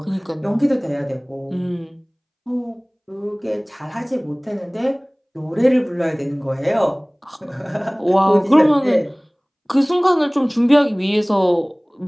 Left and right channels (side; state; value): both; identical; correlation 1.00